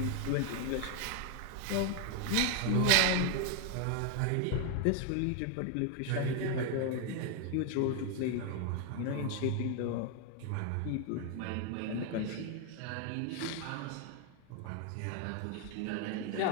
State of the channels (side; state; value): both; different; correlation 0.01